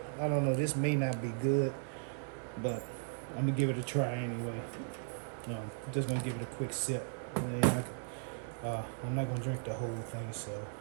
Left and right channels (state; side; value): silent; left; digital silence